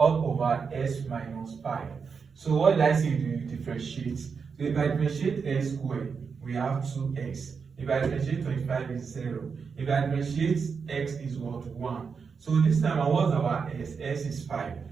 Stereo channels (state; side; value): quieter; left; 5.7 dB